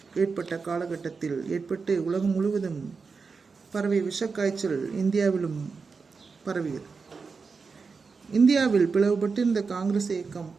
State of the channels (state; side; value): quieter; left; 4.9 dB